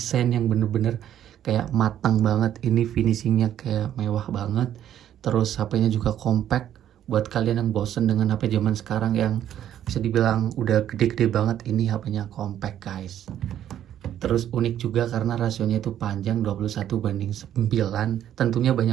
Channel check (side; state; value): left; quieter; 10.9 dB